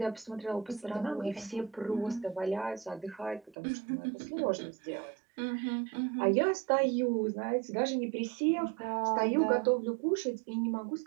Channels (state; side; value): drops out; left; at 3.6 s